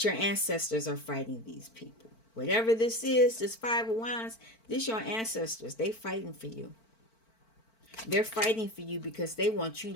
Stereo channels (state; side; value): late; right; 4.5 ms